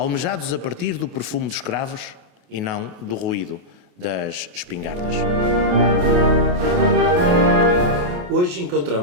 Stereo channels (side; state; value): left; late; 28 ms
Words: a partir do perfume dos cravos e não do ruído das espingardas. Hoje